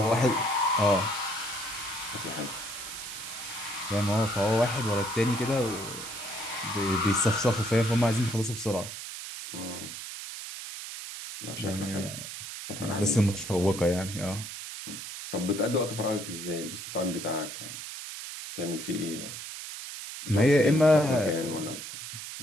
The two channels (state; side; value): noise; right; hiss, 9 dB below the sound